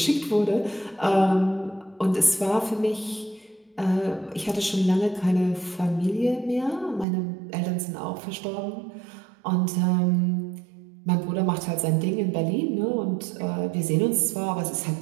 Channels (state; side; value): drops out; left; at 7.1 s